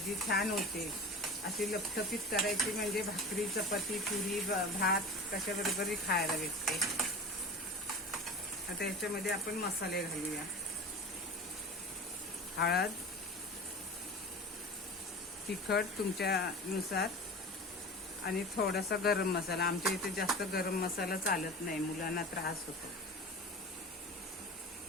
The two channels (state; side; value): normal; both; correlation 0.34